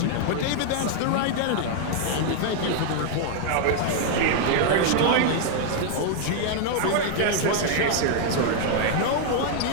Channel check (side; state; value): both; different; correlation 0.00